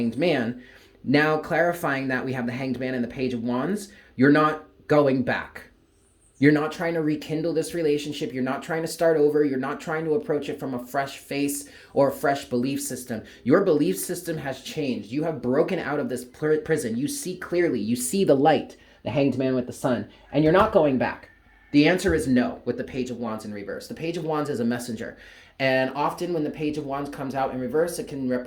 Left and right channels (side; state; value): both; identical; correlation 1.00